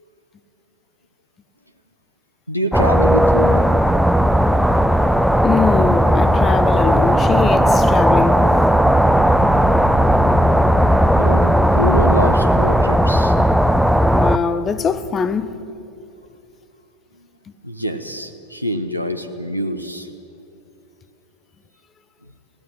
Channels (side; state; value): both; normal; correlation 0.84